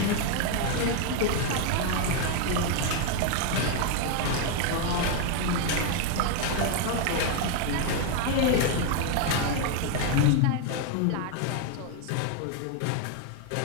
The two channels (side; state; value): both; different; correlation 0.01